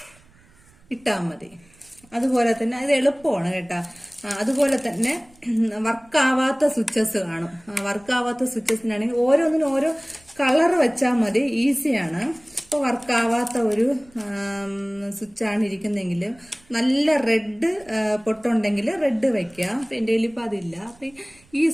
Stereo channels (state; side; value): noise; right; rumble, 29 dB below the sound